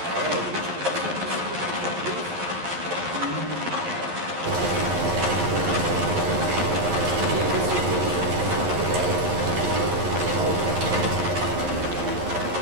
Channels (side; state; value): left; late; 11 ms